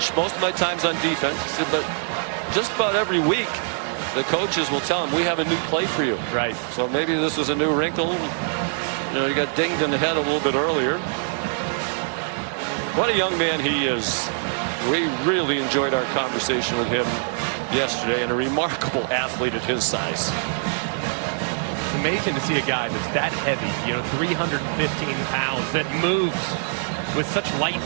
Most of my time's on defense. He said, but just about every week, the coaches will tell him, we have a new play for you. Right. So maybe this is a new wrinkle. You got dinged in the head a little bit earlier. What a young man he is. We really enjoyed our conversation with him yesterday, and a remarkable athlete at his size. It's amazing to see a guy that's that heavy, 315 pounds, that moves with such light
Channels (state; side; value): silent; left; digital silence